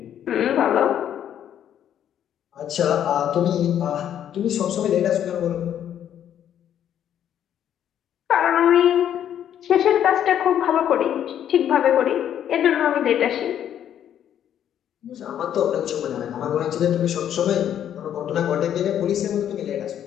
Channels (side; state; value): right; quieter; 10.1 dB